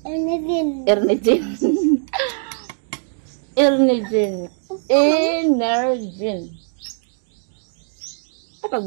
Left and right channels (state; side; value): silent; left; digital silence